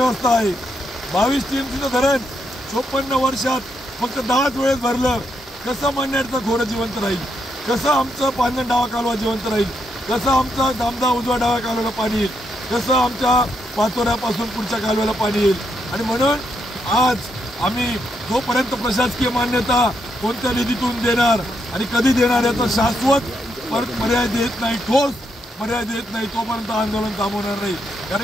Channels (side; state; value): both; normal; correlation 0.79